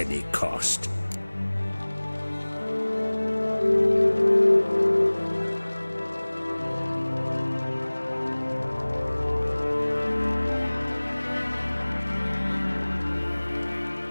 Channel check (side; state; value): both; inverted; correlation -1.00